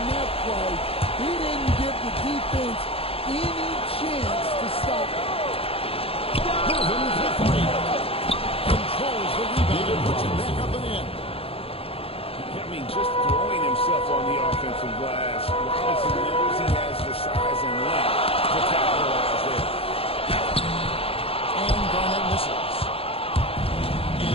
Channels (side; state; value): right; late; 0.27 ms